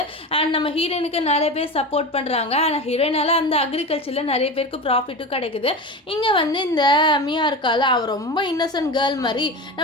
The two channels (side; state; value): both; normal; correlation 0.26